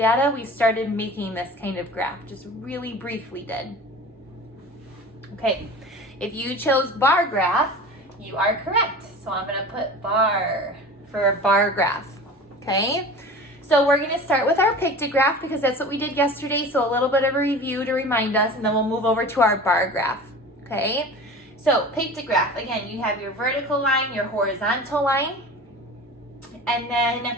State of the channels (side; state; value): both; normal; correlation 0.37